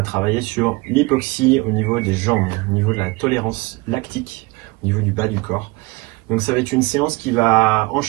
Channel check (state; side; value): quieter; left; 24.0 dB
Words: travailler sur l'hypoxie au niveau des jambes, au niveau de la tolérance lactique, au niveau du bas du corps. Donc ça va être une séance qui va